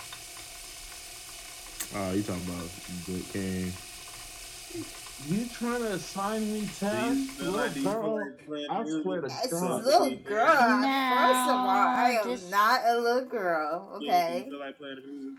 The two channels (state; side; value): identical; both; correlation 1.00